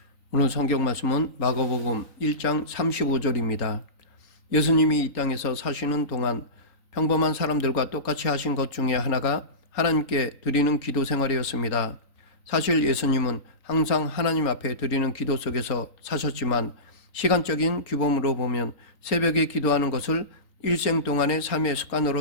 오늘 성경 말씀은 마가복음 1장 35절입니다. 예수님이 이 땅에서 사시는 동안 평범한 사람들과 똑같이 하신 것 중에 하나가 하나님께 드리는 기도 생활이었습니다. 사실 예수님은 항상 하나님 앞에 드리는 기도 속에서 사셨지만 시간적인 규범으로 보면 새벽에 기도하는 것을 일생 동안의 삶의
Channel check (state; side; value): late; right; 3.9 ms